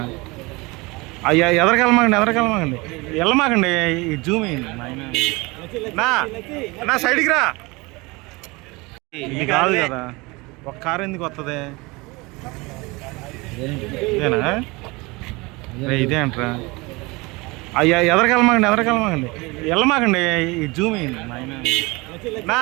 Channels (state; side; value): quieter; left; 24.6 dB